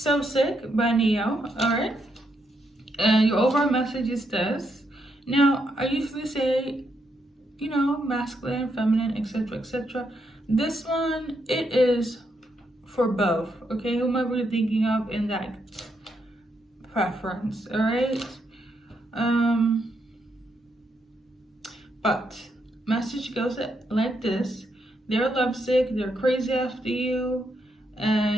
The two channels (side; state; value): both; normal; correlation 0.79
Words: Sick by Neo. Alright, and your overall message is this. Now, I usually say, masculine, feminine, etc., etc. This one, it is for both, okay? Whomever you're thinking of in that preference, alright? But message goes like this: they're lovesick, they're crazy after you,